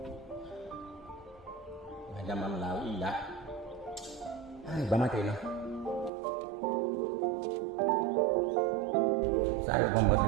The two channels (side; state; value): left; drops out; at 6.1 s